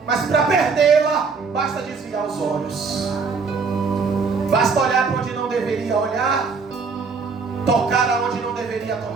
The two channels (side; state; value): left; quieter; 4.9 dB